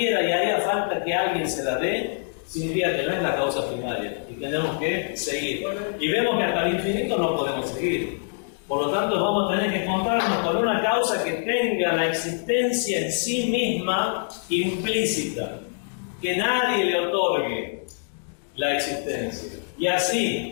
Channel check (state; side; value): silent; right; digital silence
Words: y haría falta que alguien se la dé, significa que no es la causa primaria y tenemos que seguir. Y vemos que hasta el infinito no podemos seguir. Por lo tanto, vamos a tener que encontrarnos con una causa que tenga la existencia en sí misma implícita, que nadie le otorgue la existencia. Y